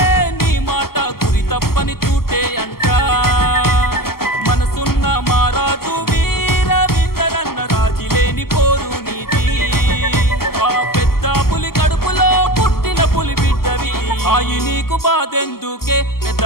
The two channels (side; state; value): right; late; 0.94 ms